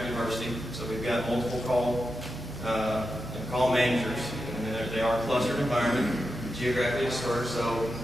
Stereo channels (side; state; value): both; normal; correlation 0.89